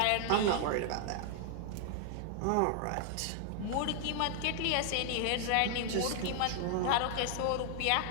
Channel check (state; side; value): different; both; correlation 0.00